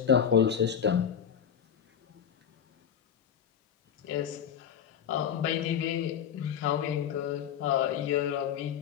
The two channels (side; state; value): right; quieter; 8.5 dB